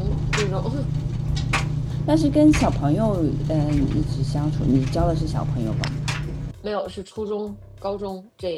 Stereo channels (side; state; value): both; identical; correlation 1.00